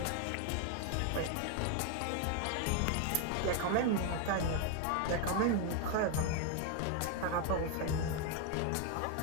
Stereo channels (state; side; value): different; both; correlation 0.01